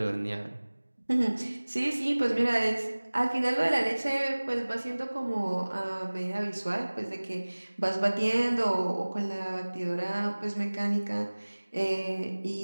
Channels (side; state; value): both; inverted; correlation -1.00